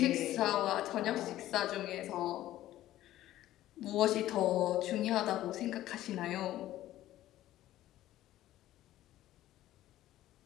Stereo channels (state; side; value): quieter; right; 14.2 dB